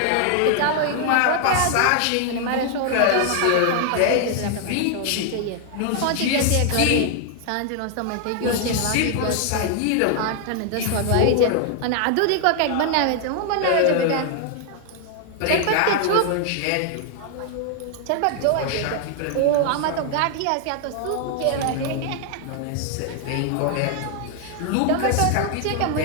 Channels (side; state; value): both; different; correlation 0.00